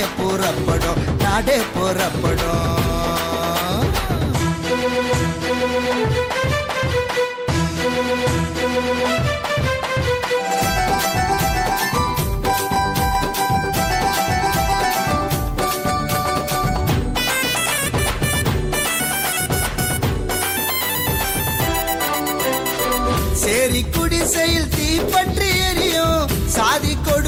புறப்படும், நாடே புறப்படும். சேரி குடிசையில் தீப்பற்றி எரியும், சாதி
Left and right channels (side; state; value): both; identical; correlation 1.00